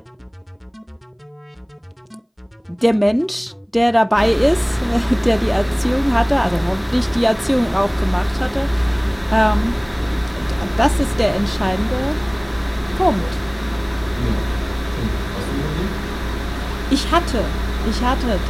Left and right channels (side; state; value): both; identical; correlation 1.00